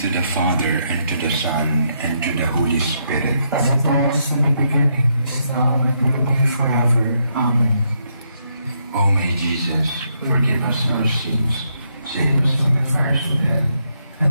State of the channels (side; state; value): both; inverted; correlation -0.77